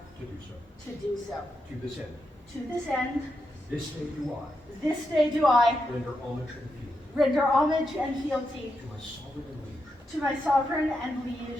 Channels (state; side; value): normal; both; correlation 0.85